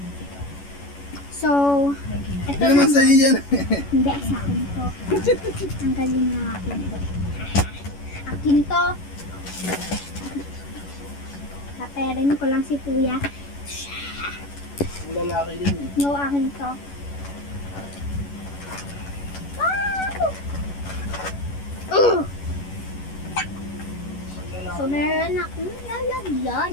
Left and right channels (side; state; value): right; late; 11 ms